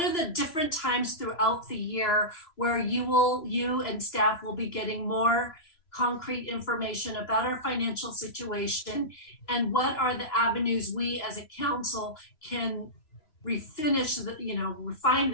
different times throughout the year where you and staff will be getting more concrete information about our financial situation, and what are the avenues we as a council can refine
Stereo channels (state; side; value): late; right; 2.9 ms